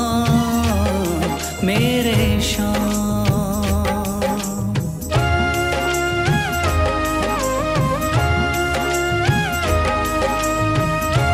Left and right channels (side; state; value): both; identical; correlation 1.00